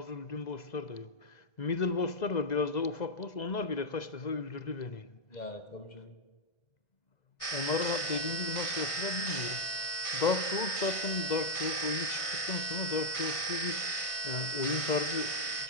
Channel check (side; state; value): right; late; 1.5 ms